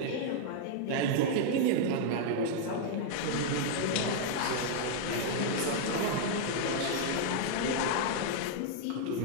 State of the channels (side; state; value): both; different; correlation -0.01